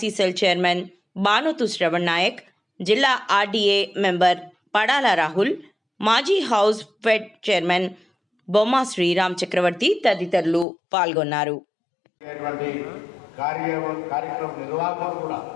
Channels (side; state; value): right; drops out; at 10.7 s